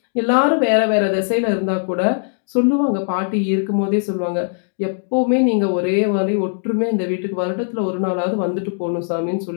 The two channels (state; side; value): silent; right; digital silence